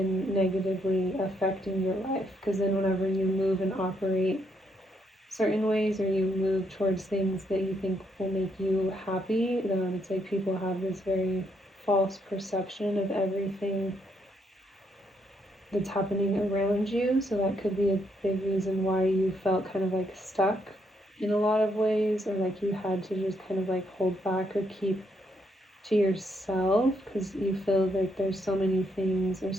negatively affecting your life. Because then whenever you move and operate certain ways or you move towards things that you think will make you happy, it's like people have this very false perception of everything that's happening around you. So that could be a big reason why you felt kind of like stuck in a lot of ways, or like you had to just kind of like hold back or keep to yourself, because you feel like there's so many things or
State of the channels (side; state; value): both; normal; correlation 0.75